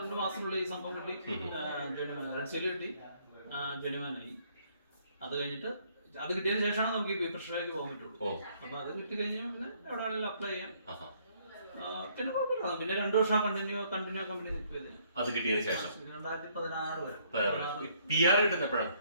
മാസത്തിനുള്ളിൽ ഈ സംഭവം കിട്ടി. റെഡ് സീൽ കിട്ടി, ജെനുവാനായി. അത് കഴിഞ്ഞിട്ട് അത് കിട്ടിയതിന് ശേഷമാണ് നമുക്ക് ഈ പ്രഷറിലേക്ക് പോകാൻ പറ്റുള്ളൂ. അപ്പൊ അത് കിട്ടി കഴിഞ്ഞാൽ പിന്നെ എവിടെ വേണമെങ്കിലും അപ്ലൈ ചെയ്യാം. പിന്നെ കുഴപ്പമില്ല. പിന്നെ 2 വർഷം കണ്ടിന്യൂ കമ്പനി നിൽക്കിയത്. അത് കിട്ടിയതിന് ശേഷം 2016 വരെ PR കിട്ടുന്നപ്പോഴാണ്.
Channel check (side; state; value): both; inverted; correlation -0.66